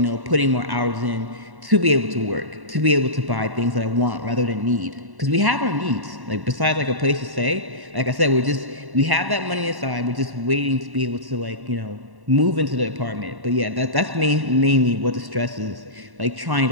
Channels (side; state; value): left; late; 1.1 ms